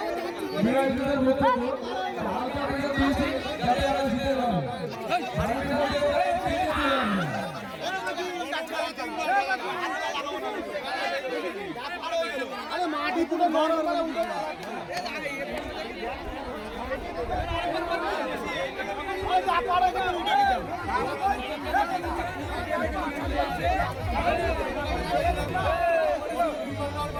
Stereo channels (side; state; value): both; identical; correlation 1.00